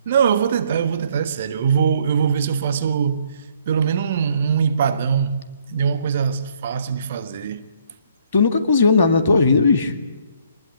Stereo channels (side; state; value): both; inverted; correlation -0.66